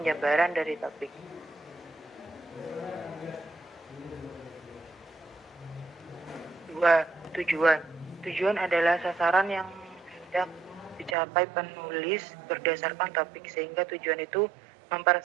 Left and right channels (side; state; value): left; drops out; at 11.2 s